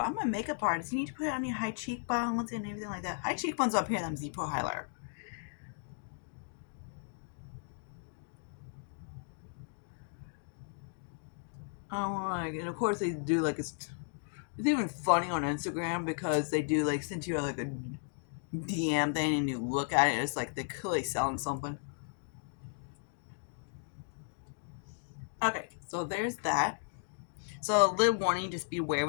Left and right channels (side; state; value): right; silent; digital silence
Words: I'm a makeup artist. You need to put it on your high cheekbones and everything like that. High cheekbones up here, them Z-Pro highlighter. And of course they do like it's even funny on Instagram because they do like send you like a DM thing and you look at it, it's like they're clearly selling something. Okay, so there's that. So a little warning, just be aware